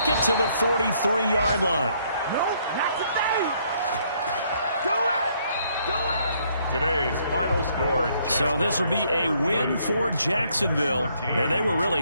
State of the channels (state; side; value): inverted; both; correlation -0.68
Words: it to the 43-yard line. No, not today. Do it. Do it. Today's final score. So this will be a win for Jacksonville. And they were really